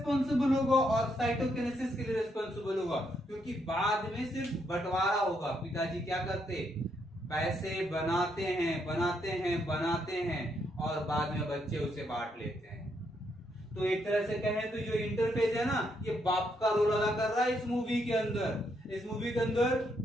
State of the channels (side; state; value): both; normal; correlation 0.76